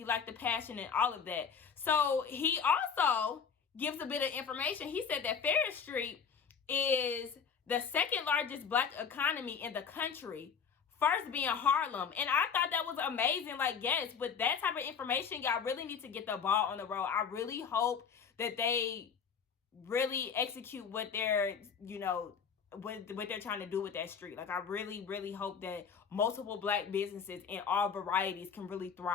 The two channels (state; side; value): quieter; right; 6.6 dB